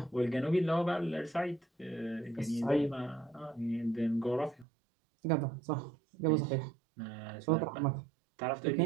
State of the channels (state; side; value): drops out; left; at 4.7 s